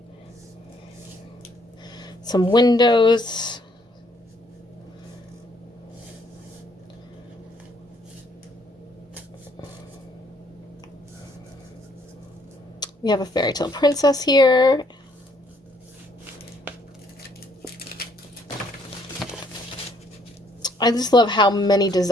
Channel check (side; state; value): both; normal; correlation 0.67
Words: Some windows. We have a Fairytale princess here. I just love how many